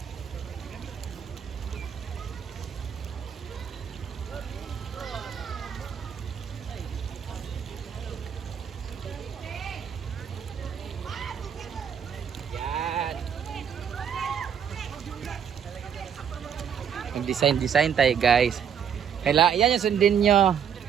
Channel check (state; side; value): quieter; left; 8.0 dB